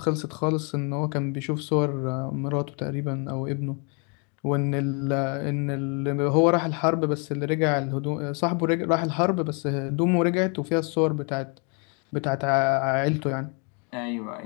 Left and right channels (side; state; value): right; quieter; 36.1 dB